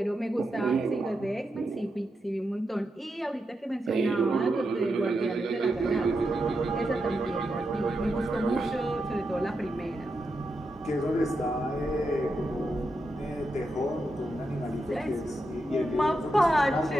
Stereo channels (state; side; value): normal; both; correlation 0.86